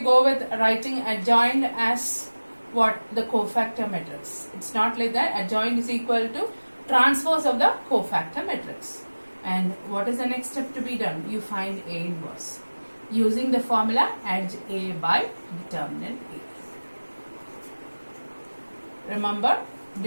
go with writing adjoint as what? The cofactor matrix. It's not like that. Adjoint is equal to transpose of the cofactor matrix. And what is the next step to be done? You find A inverse using the formula adj A by determinant A. Remember,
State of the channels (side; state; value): both; inverted; correlation -1.00